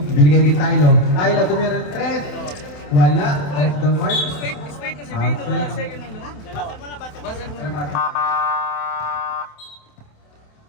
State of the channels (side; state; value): right; late; 27 ms